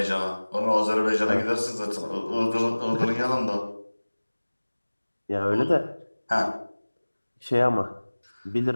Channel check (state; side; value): inverted; both; correlation -1.00